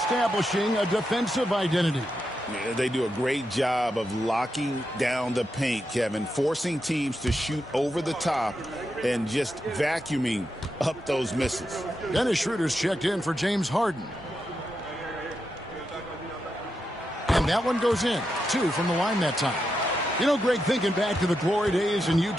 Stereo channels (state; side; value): normal; both; correlation 0.86